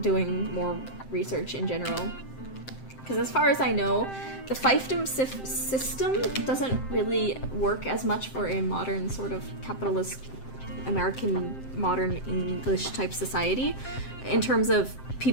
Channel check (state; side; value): late; right; 7.7 ms